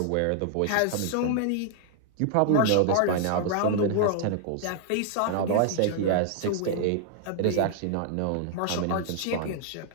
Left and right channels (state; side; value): different; both; correlation -0.01